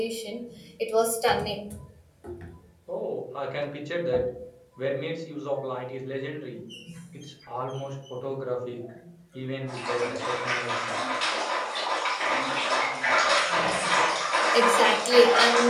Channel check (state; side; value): identical; both; correlation 1.00